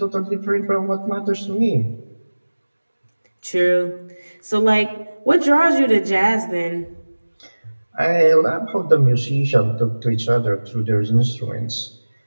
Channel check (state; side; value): inverted; both; correlation -1.00